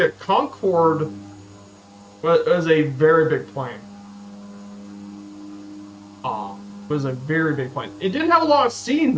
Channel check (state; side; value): identical; both; correlation 1.00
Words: Concorde was a very big plane. It was a very big plane. It didn't have a lot of seating